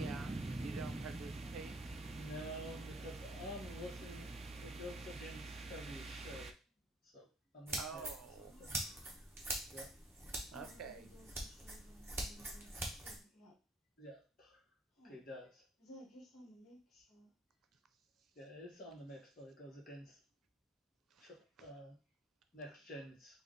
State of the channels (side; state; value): both; normal; correlation 0.60